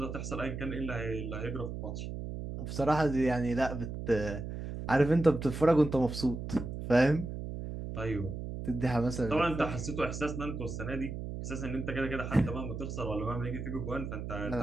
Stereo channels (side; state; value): right; noise; hum, 6 dB below the sound